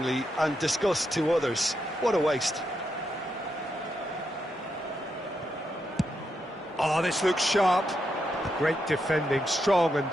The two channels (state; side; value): normal; both; correlation 0.83